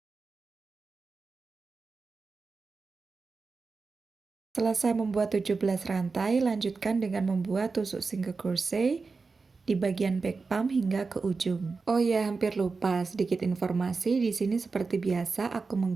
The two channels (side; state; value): left; quieter; 4.4 dB